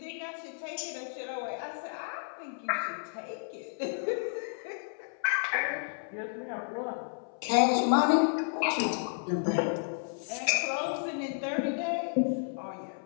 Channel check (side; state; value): right; silent; 56 dB below the other